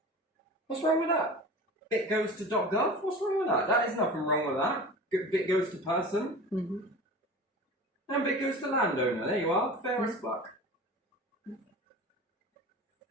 What's wrong with that? Bit goes to .gov? What's wrong with that? That is nothing wrong with that. Bit goes to person. Mm-hmm. And bit goes to landowner. There you are. Fair as fuck.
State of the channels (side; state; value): both; normal; correlation 0.36